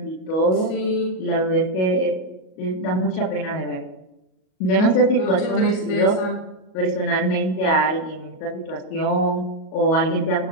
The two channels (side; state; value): right; late; 38 ms